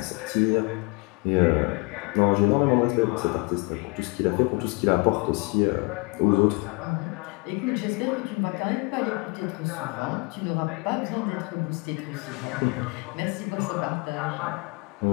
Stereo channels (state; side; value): quieter; right; 29.5 dB